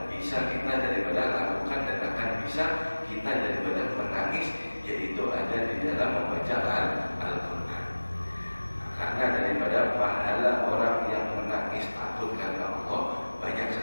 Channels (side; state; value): both; inverted; correlation -1.00